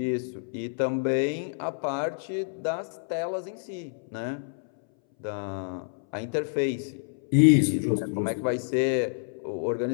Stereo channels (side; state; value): right; silent; 59 dB below the other